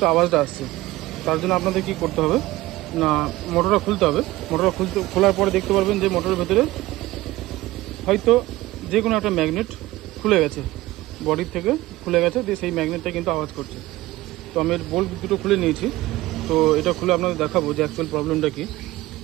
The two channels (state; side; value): quieter; left; 18.0 dB